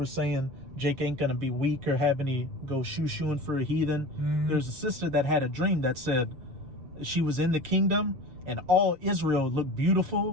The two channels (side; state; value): left; late; 7.3 ms